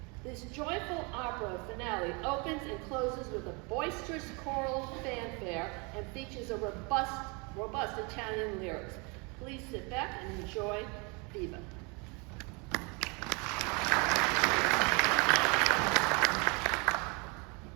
This joyful opera finale opens and closes with a boisterous choral fanfare and features a robust Italian lyrics. Please sit back and enjoy Viva.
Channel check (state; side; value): quieter; left; 30.8 dB